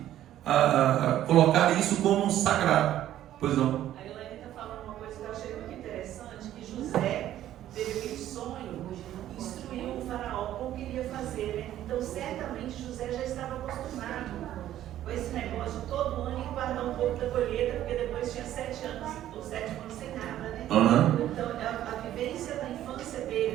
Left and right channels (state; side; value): quieter; left; 12.5 dB